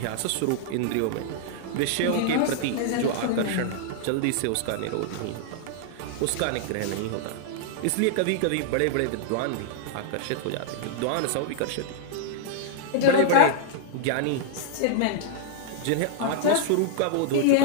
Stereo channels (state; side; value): different; both; correlation -0.01